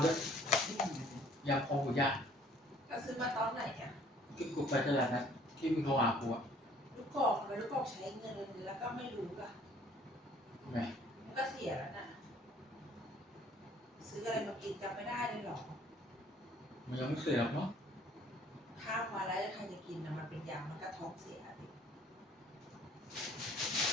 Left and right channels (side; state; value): both; normal; correlation 0.57